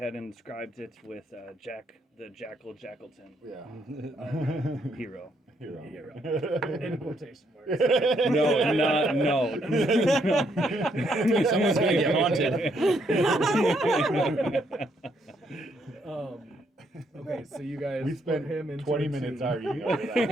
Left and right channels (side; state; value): both; normal; correlation 0.73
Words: inscribed it with Jack the Jackal Jackleton Yeah. hero. Hero. In quotation marks. No, not no. Someone's gonna get haunted. Okay, so you guys We put spent him into 20 a minutes tomb. arguing over that.